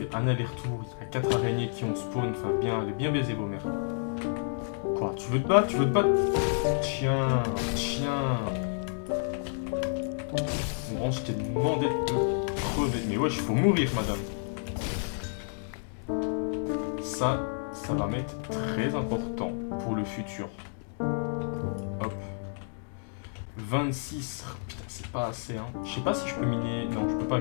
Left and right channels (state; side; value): silent; right; digital silence